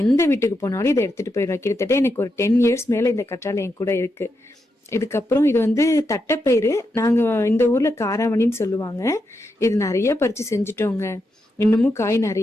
எந்த வீட்டுக்கு போனாலும் இதை எடுத்துட்டு போயிடுவேன். கிட்டத்தட்ட எனக்கு ஒரு 10 years மேலே இந்த கற்றாழை என் கூட இருக்கு. இதுக்கப்புறம் இது வந்து தட்டைப்பயிறு. நாங்கள் இந்த ஊரில் காராமணின்னு சொல்லுவாங்க. இது நிறைய பறித்து செஞ்சுட்டோங்க. இன்னமும் காய்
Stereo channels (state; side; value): normal; both; correlation 0.84